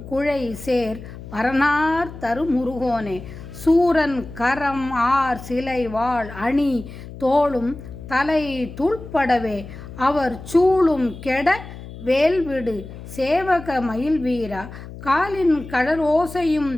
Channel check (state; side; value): noise; left; hum, 13 dB below the sound